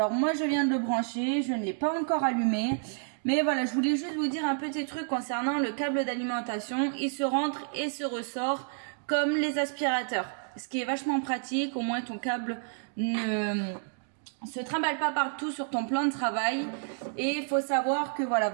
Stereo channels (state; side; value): silent; left; digital silence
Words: moi je viens de le brancher, je ne l'ai pas encore allumé. Mais voilà, je voulais juste vous dire un petit truc concernant le câble d'alimentation. Il se rentre et se ressort comme les aspirateurs. Ce qui est vachement pratique, au moins ton câble ne se trimballe pas partout sur ton plan de travail. Et il faut savoir que voilà,